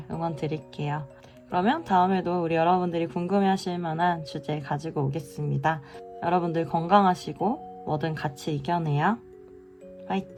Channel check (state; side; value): identical; both; correlation 1.00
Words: 응원 드릴게요. 그러면 다음에도 우리 여러분들이 궁금해하실 만한 주제 가지고 오겠습니다. 여러분들 건강하시고 뭐든 같이 이겨내요.